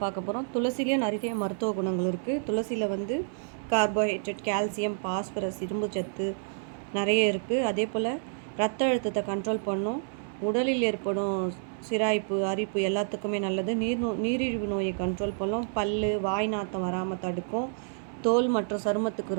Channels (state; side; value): silent; left; 58 dB below the other